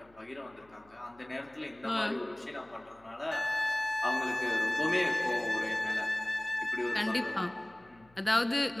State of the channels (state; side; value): noise; left; hum, 29 dB below the sound